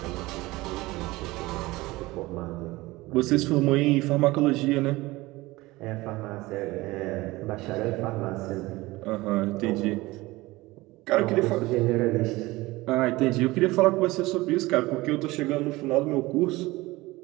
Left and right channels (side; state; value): left; quieter; 20.2 dB